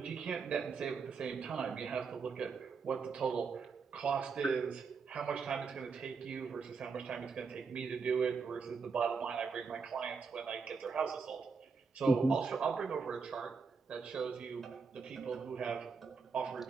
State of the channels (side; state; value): left; quieter; 5.2 dB